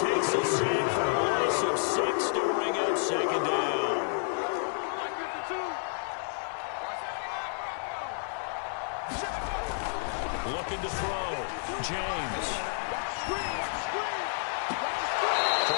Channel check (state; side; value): silent; right; 58 dB below the other